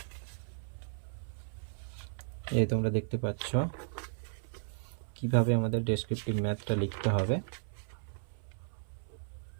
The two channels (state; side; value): silent; left; 54 dB below the other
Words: এই তোমরা দেখতে পাচ্ছ কিভাবে আমাদের ডেসক্রিপটিভ ম্যাথটা লিখতে হবে।